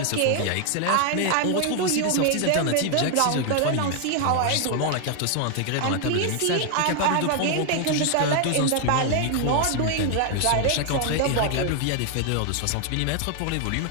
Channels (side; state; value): both; different; correlation 0.00